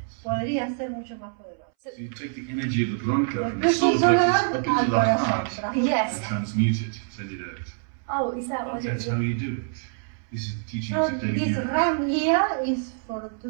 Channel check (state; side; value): silent; left; 61 dB below the other